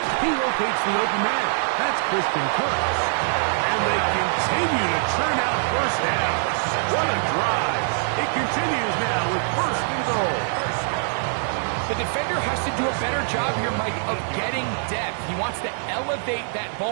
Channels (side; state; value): left; silent; 63 dB below the other